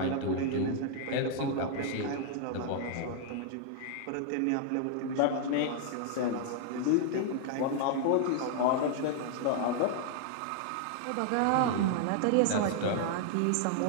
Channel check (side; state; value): both; different; correlation 0.00